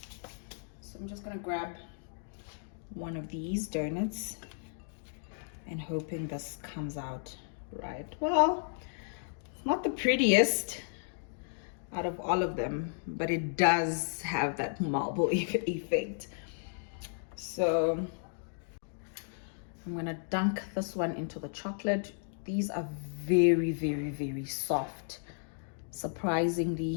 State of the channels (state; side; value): silent; right; digital silence